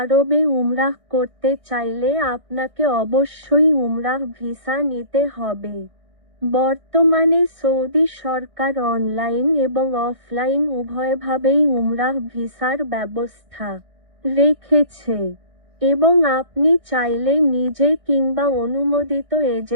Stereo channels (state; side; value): late; left; 1.6 ms